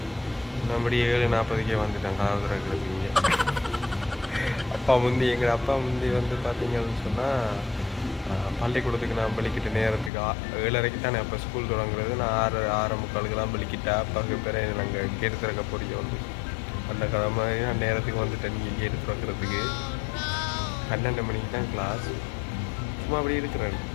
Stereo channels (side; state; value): right; drops out; at 10.1 s